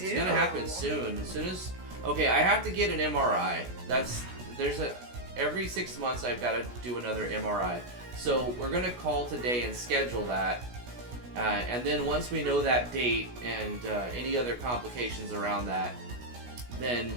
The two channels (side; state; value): left; late; 16 ms